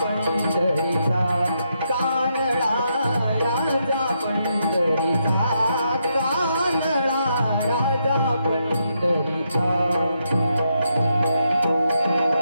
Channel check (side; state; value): both; inverted; correlation -0.80